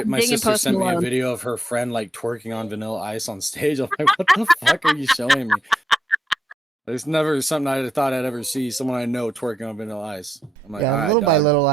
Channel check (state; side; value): normal; both; correlation 0.83